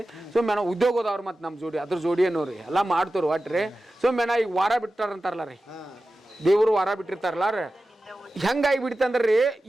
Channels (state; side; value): normal; both; correlation 0.94